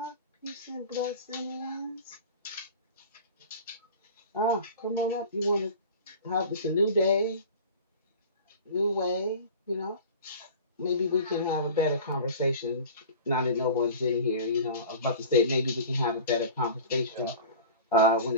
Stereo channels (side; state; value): both; inverted; correlation -0.39